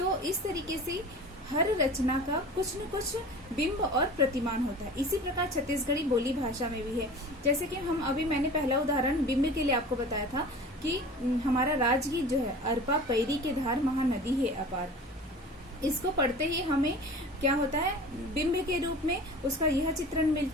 इस तरीके से हर रचना का कुछ न कुछ बिंब और प्रतिमान होता है। इसी प्रकार छत्तीसगढ़ी बोली भाषा में भी है। जैसे कि हम अभी, मैंने पहला उदाहरण बिंब के लिए आपको बताया था कि हमारा राजगीत जो है, अरपा पैरी के धार महानदी है अपार, इसको पढ़ते ही हमें क्या होता है, बिंब के रूप में उसका यह चित्रण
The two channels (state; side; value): normal; both; correlation 0.38